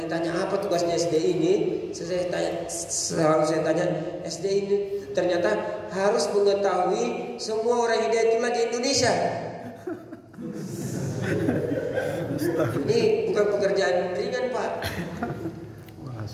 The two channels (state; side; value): identical; both; correlation 1.00